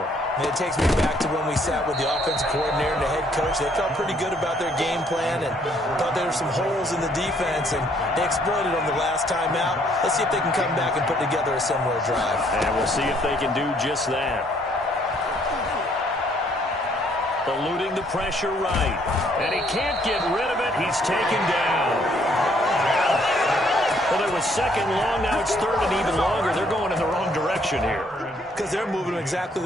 It takes me back to when we sat with the offensive coordinator and the head coach. They felt pretty good about their game plan and thought there were some holes in the defense, and they exploited them the last time out. Let's see if they can come back and put together a similar drive. And we'll see if they can do just that. Eluding the pressure right. And he can't get rid of it. He's taken down. Well, there was second long. Now it's third and even longer. They're going in the wrong direction here. Because they're moving exactly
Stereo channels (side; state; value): both; normal; correlation 0.66